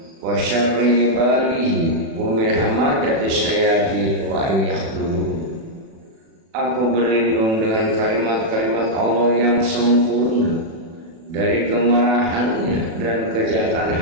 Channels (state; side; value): late; left; 36 ms